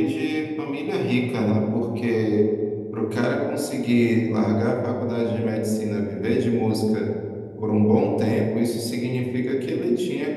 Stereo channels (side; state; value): both; identical; correlation 1.00